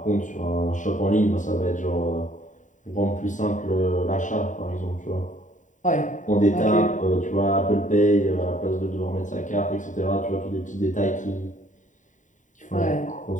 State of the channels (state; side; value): late; right; 0.36 ms